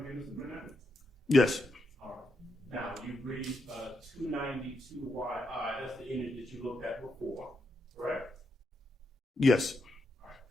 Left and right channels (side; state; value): both; normal; correlation 0.82